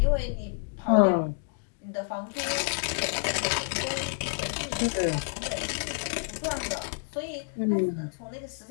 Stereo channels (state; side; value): silent; right; digital silence